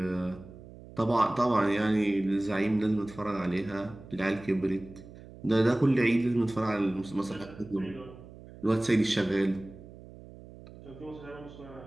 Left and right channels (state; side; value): noise; right; hum, 18 dB below the sound